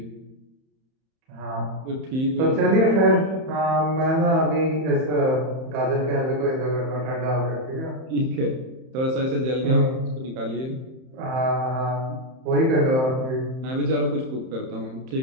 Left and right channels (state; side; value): late; left; 31 ms